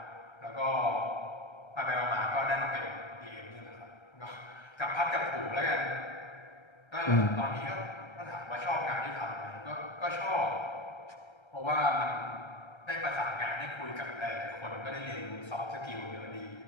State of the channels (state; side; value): late; right; 1.3 ms